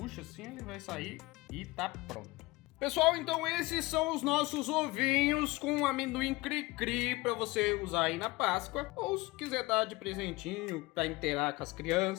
assim, ele vai sair e tá pronto. Pessoal, então esses são os nossos ovinhos com amendoim cri-cri para você usar aí na Páscoa, ou se quiser dar de presentinho para inteirar com as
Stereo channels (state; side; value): quieter; right; 21.5 dB